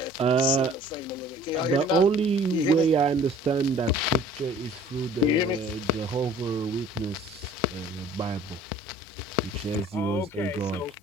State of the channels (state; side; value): normal; both; correlation 0.51